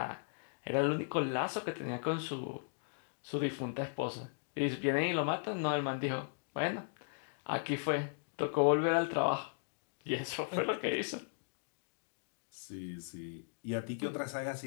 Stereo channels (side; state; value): right; silent; digital silence